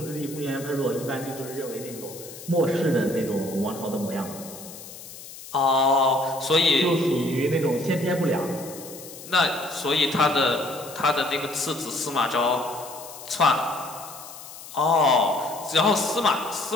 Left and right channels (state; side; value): noise; left; hiss, 15 dB below the sound